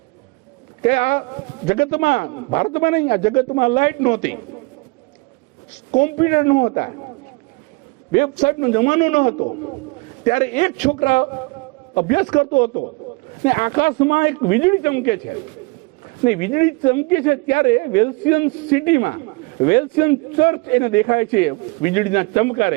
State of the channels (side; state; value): left; quieter; 27.2 dB